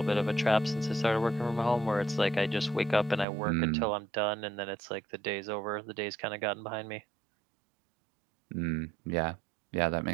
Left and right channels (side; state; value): left; drops out; at 3.2 s